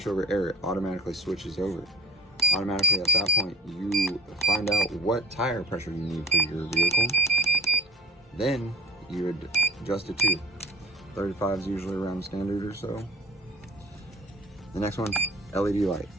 over air, it automatically switches over. Automatically at that point, you find out what tire pressure you need for your vehicle. Then you would adjust it to 35 is usually around standard or so. The next one, LED light.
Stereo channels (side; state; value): both; normal; correlation 0.44